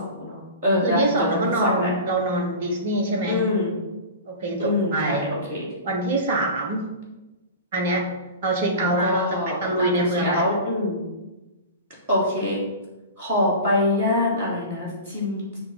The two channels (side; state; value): both; inverted; correlation -0.31